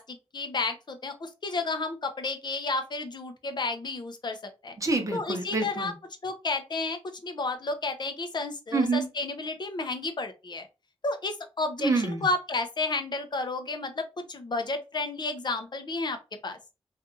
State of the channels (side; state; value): both; normal; correlation 0.33